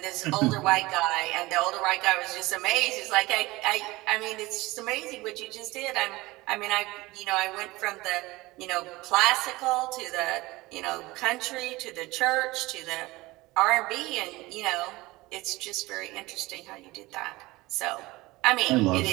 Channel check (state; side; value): quieter; left; 20.6 dB